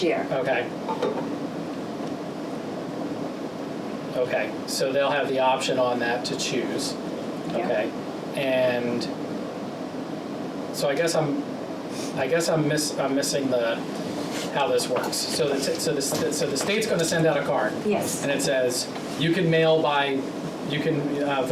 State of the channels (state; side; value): identical; both; correlation 1.00